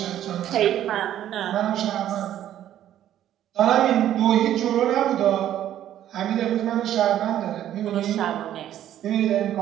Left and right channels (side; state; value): left; quieter; 11.6 dB